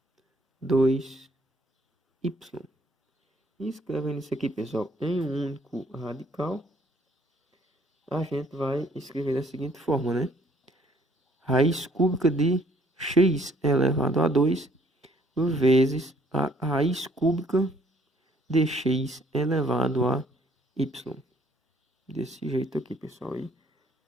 2y. E escrevendo isso aqui, pessoal, em um único radical, a gente vai escrever da seguinte forma, né? Raiz cúbica de x elevado a 2 vezes a raiz cúbica de x elevado a y. Desse jeito aqui, pessoal. E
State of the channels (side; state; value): both; normal; correlation 0.62